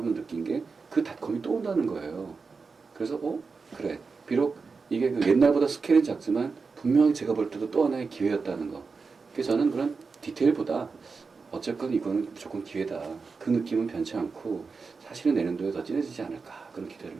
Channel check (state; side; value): quieter; left; 4.7 dB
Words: 느낀 게 그 닷컴이 또 온다는 거예요. 그래서 그래. 비록 이게 옛날보다 스케일은 작지만 분명히 제가 볼 때도 또 하나의 기회였다는 거. 그래서 저는 그런 디테일보다 어쨌건 이거는 무조건 기회다. 그 느낌은 변치 않고 사실은 내년도에 더 진해지지 않을까, 그런